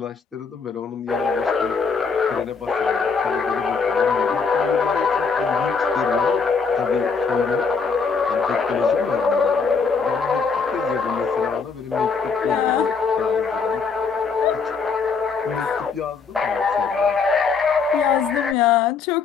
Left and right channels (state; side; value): quieter; right; 5.3 dB